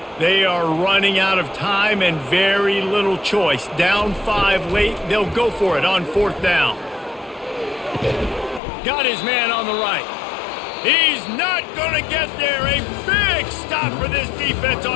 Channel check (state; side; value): drops out; right; at 8.6 s